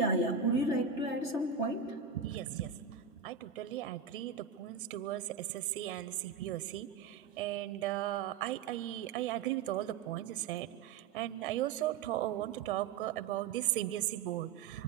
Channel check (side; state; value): left; quieter; 6.4 dB